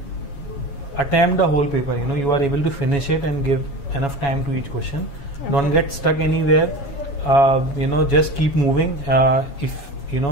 attempt the whole paper, you are able to finish it and give enough time to each question. Okay. Don't get stuck anywhere. Just keep moving. If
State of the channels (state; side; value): late; right; 7.2 ms